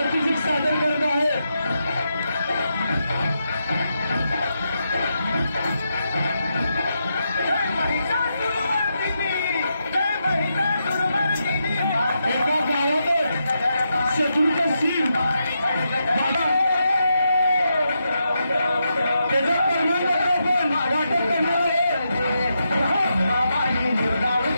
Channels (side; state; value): both; inverted; correlation -0.84